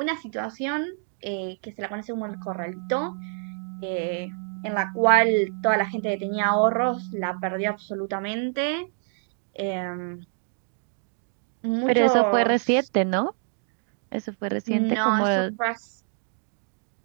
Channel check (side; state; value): left; silent; 61 dB below the other